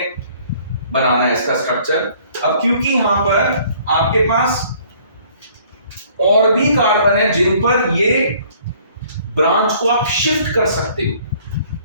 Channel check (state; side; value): inverted; both; correlation -0.57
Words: बनाना है इसका स्ट्रक्चर। अब क्योंकि यहां पर आपके पास और भी कार्बन है जिन पर ये ब्रांच को आप शिफ्ट कर सकते